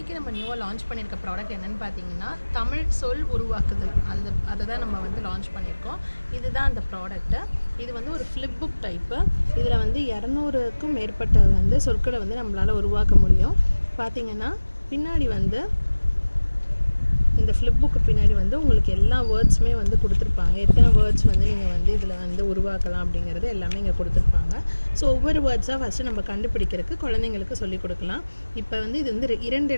நம்ம நியூவாக லான்ச் பண்ணியிருக்க ப்ராடக்ட் என்னென்னு பார்த்தீங்கன்னா தமிழ் சொல் உருவாக்குதல். அதை தான் நம்ம வந்து லான்ச் பண்ணியிருக்கோம். இதுதான் அந்த ப்ராடக்ட்டு. இது வந்து ஒரு ஃப்ளிப் புக் டைப்பு. இதில் வந்து 200க்கும் மேற்பட்ட வந்து சொற்களை வந்து நம்மளால் உருவாக்க முடியும். பார்த்திங்கன்னா பின்னாடி வந்து இந்த ஃப்ளிப் புக்கு பின்னாடி வந்து உங்களுக்கு எல்லா வேர்ட்ஸுமே வந்து கொடுத்துருப்பாங்க. எத்தனை வேர்ட்ஸ் வந்து நீங்கள் வந்து இதில் வந்து உருவாக்கலாம் அப்படிங்கிறது எல்லாமே இங்கே கொடுத்துருப்பாங்க. ஸோ ஒவ்வொரு வேர்ட்ஸாக ஃபஸ்ட்டு நம்ம கண்டுபிடிக்கிறதுக்கு குழந்தைங்களுக்கு சொல்லிக் கொடுக்கலாம். இப்போ வந்து இது வந்து 2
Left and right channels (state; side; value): inverted; both; correlation -1.00